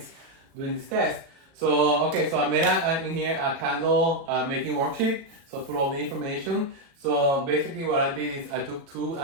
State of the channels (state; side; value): late; left; 36 ms